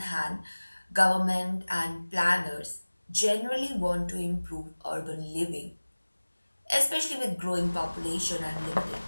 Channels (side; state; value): both; inverted; correlation -1.00